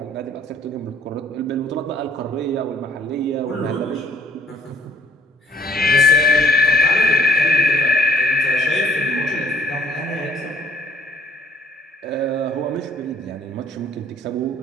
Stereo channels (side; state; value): both; normal; correlation 0.59